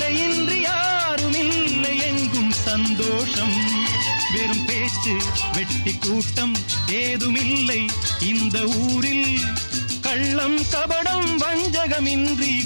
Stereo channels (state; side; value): inverted; both; correlation -1.00